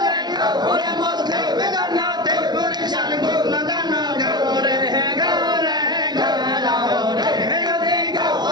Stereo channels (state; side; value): late; left; 0.20 ms